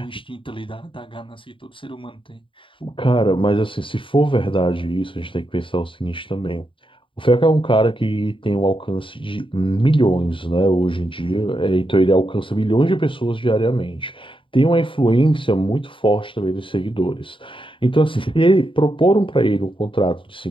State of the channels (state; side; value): late; right; 0.25 ms